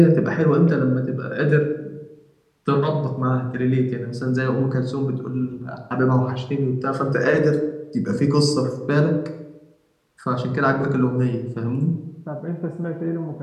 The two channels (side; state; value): both; identical; correlation 1.00